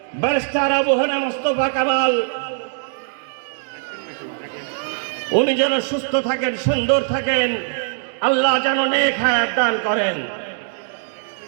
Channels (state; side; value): silent; left; digital silence